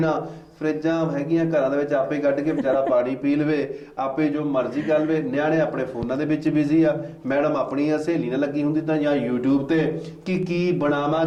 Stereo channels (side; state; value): both; identical; correlation 1.00